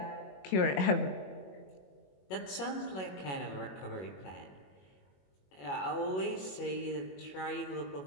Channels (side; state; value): right; late; 21 ms